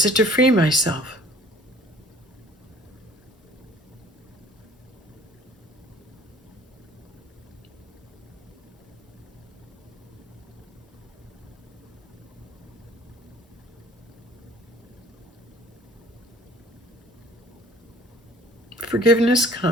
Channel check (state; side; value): normal; both; correlation 0.52